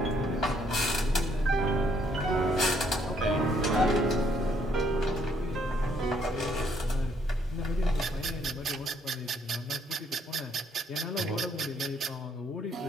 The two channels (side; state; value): both; normal; correlation 0.69